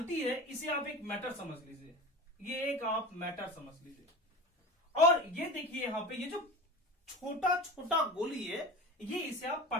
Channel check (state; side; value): normal; both; correlation 0.32